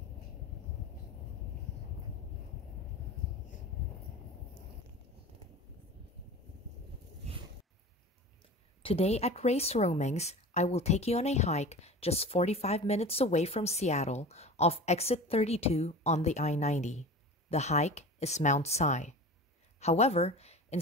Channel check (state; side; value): normal; both; correlation 0.35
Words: Today at Race Roamings, I will take you on a hike just 45 minutes away from Seattle off exit 32 on the I-90. The hike is Mount Si. However,